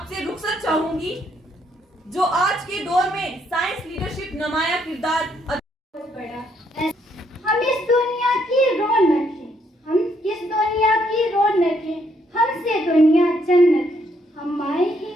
रुखसत चाहूंगी। जो आज के दौर में साइंस लीडरशिप नुमाया किरदार हम इस दुनिया की रौनक है, हम इस दुनिया की रौनक है, हमसे दुनिया जन्नत है। हम माए हैं,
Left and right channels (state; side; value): normal; both; correlation 0.72